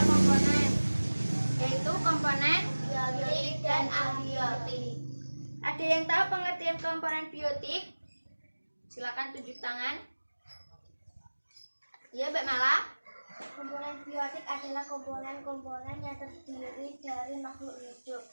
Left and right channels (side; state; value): both; inverted; correlation -1.00